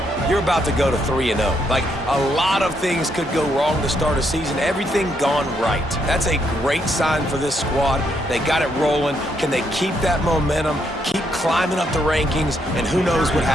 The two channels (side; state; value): both; normal; correlation 0.75